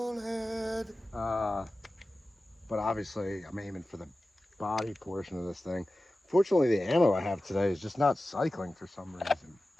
head. But obviously I'm aiming for the body portion of this thing. Fortunately, the ammo I have today is just not cycling for some reason.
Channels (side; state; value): both; normal; correlation 0.95